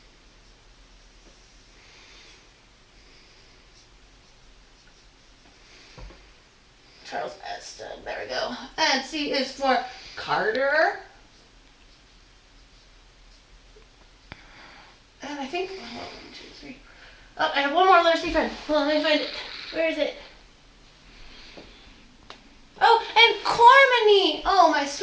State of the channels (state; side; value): identical; both; correlation 1.00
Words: Charles Eston, there we go. And C is for Carter. And I think, 1, 2, 3, Oh, I have one more letter C friend. Hold on, let me find it. Where is it? Oh, and Cormany. Oh, my